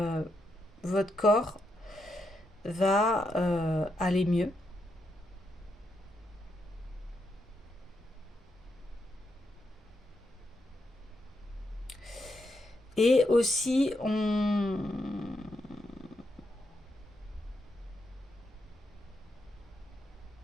votre corps va aller mieux. Et aussi, on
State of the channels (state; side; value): normal; both; correlation 0.82